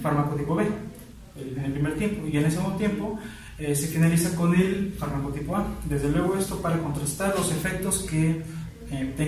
fármaco tipo B en el primer tiempo, y en el segundo tiempo se finaliza con el fármaco tipo A. Desde luego esto para contrastar los efectos que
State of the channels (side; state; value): both; identical; correlation 1.00